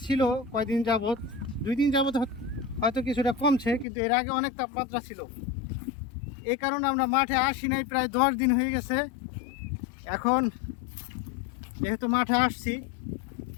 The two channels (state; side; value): drops out; right; at 3.9 s